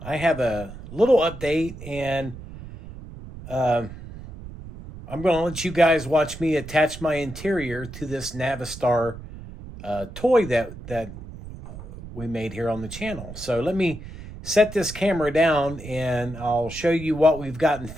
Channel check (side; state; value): right; noise; rumble, 13 dB below the sound